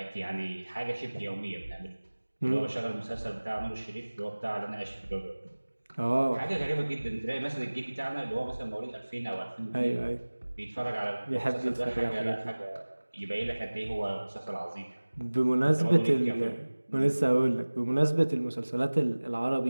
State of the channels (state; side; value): inverted; both; correlation -1.00